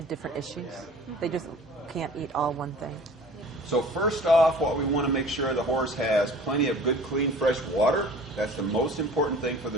different issues. They just can't eat all one thing. So first off, what we want to make sure the horse has plenty of good, clean, fresh water. That's the most important thing for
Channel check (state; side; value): normal; both; correlation 0.45